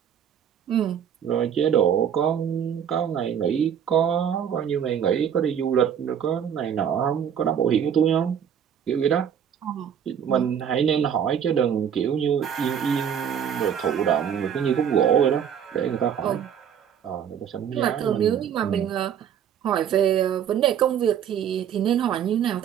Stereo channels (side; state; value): left; quieter; 8.6 dB